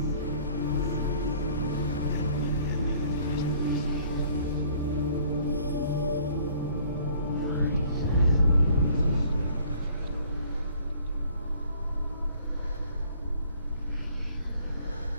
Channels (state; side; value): inverted; both; correlation -0.56